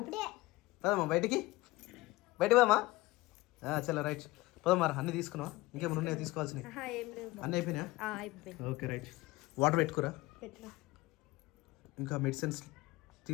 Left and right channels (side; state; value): right; quieter; 20.1 dB